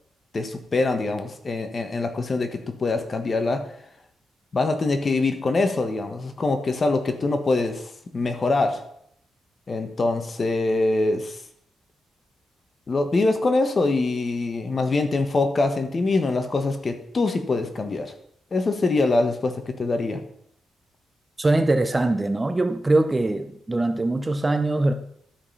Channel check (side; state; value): both; normal; correlation 0.90